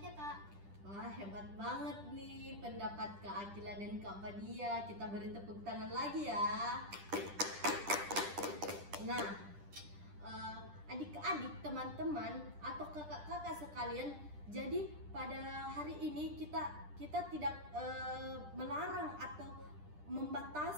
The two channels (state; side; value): late; left; 10 ms